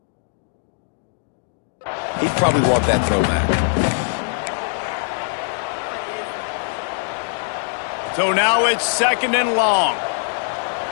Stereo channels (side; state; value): right; silent; digital silence